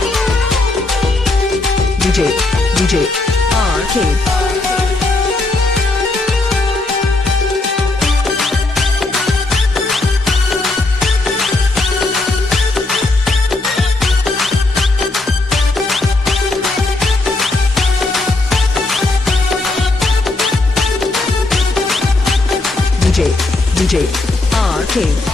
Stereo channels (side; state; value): right; quieter; 3.0 dB